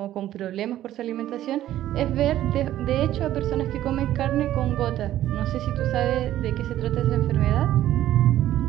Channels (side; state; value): left; quieter; 13.1 dB